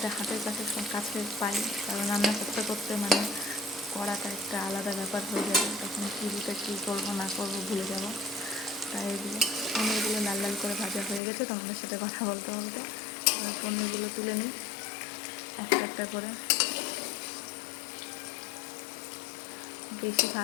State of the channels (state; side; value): drops out; right; at 11.2 s